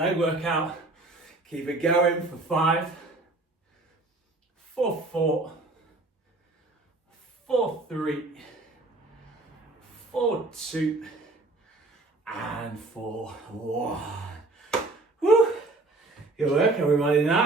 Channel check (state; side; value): quieter; left; 3.1 dB